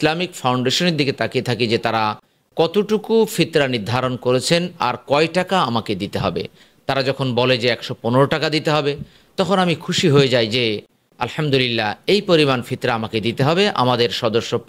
ফাউন্ডেশনের দিকে তাকিয়ে থাকি যে তারা কতটুকু ফিতরা নির্ধারণ করেছেন আর কয় টাকা আমাকে দিতে হবে। তারা যখন বলে যে 115 টাকা দিতে হবে, তখন আমি খুশি হয়ে যাই যে আলহামদুলিল্লাহ এই পরিমাণ ফিতরা আমাকে দিতে হবে, আমাদের সদস্য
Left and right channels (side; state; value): both; identical; correlation 1.00